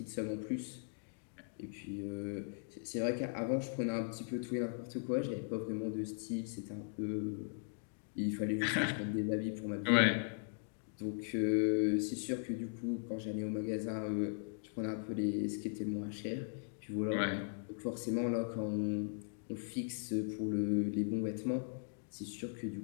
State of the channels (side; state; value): right; silent; digital silence